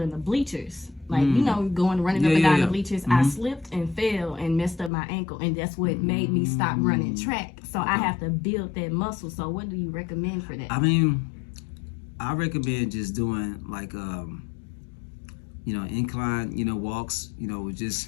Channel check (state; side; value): drops out; right; at 4.9 s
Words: in the bleachers. Like, you know, running up and down the bleachers, I slipped and fell and messed up my ankle, and that's what made me stop running track. So I have to build that muscle. So what do you recommend for that? I mean, I recommend just doing like, you know, incline, you know, walks, you know, with